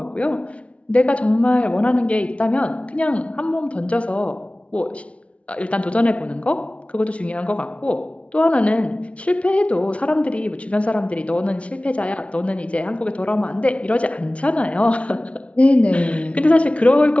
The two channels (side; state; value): right; late; 0.062 ms